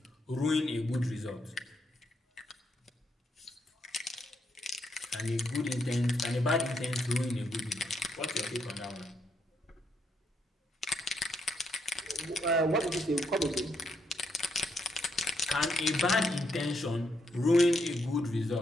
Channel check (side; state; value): both; normal; correlation 0.77